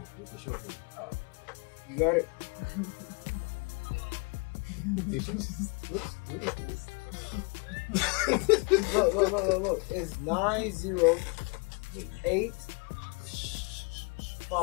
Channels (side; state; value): right; quieter; 32.4 dB